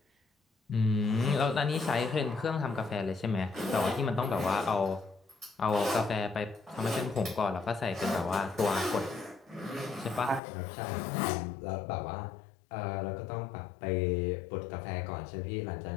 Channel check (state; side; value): drops out; right; at 10.4 s